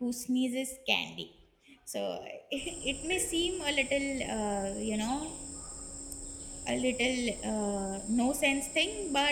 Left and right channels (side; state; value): both; identical; correlation 1.00